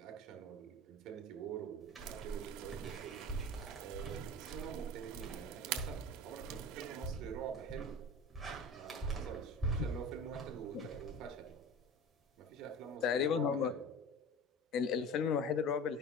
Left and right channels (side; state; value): both; normal; correlation 0.36